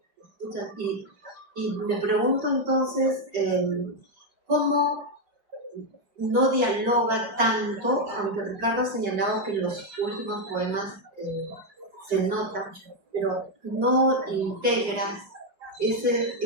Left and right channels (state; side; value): late; left; 4.6 ms